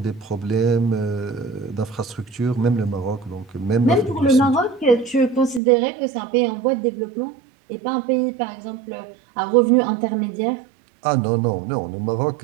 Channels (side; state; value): left; drops out; at 5.6 s